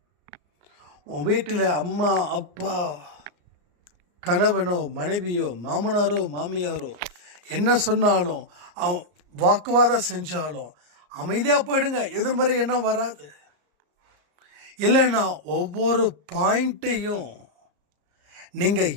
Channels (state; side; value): late; left; 34 ms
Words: உன் வீட்டில் அம்மா அப்பா கணவனோ மனைவியோ மாமனாரோ மாமியாரோ என்ன சொன்னாலும் அவன் வாக்குவாதம் செஞ்சாலும் அமைதியாக போயிடுங்க, எதிர்மறை எண்ணம் வராது. இல்லைன்னா ஒவ்வொரு பாயிண்ட்டையும் நீங்கள்